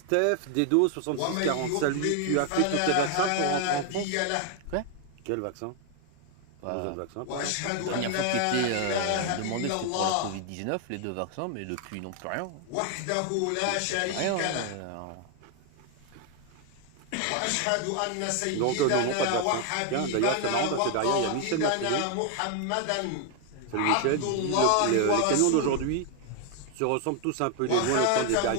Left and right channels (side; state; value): both; different; correlation 0.00